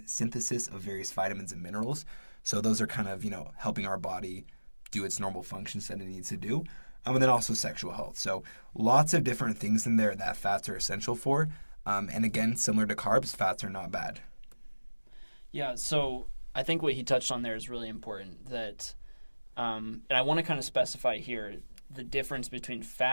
synthesis of various vitamins and minerals. So those are kind of, helping our body do its normal functions that it needs to do. And then also sexual health. So lots of different things in there that fats are essential for. And again, similar to carbs, fats are not bad. Yeah, so I think what he touched on there is really important. And I want to kind of specify here the difference between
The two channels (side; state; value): both; inverted; correlation -1.00